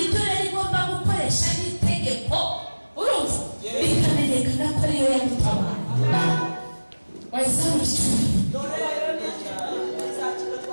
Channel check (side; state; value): both; inverted; correlation -1.00